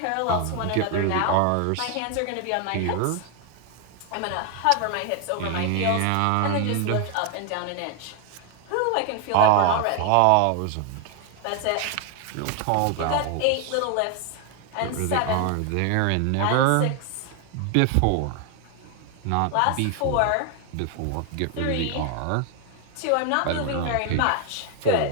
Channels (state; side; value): different; both; correlation 0.00